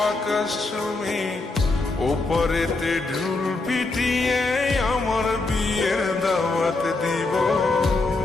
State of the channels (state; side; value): quieter; right; 3.4 dB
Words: আকাশ চুমি, ওপরেতে ঢুল পিটিয়ে আমার বিয়ের দাওয়াত দিব।